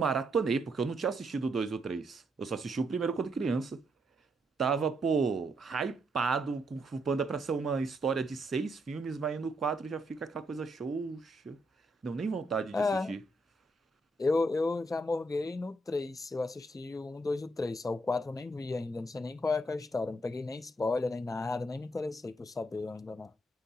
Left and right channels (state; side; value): normal; both; correlation 0.77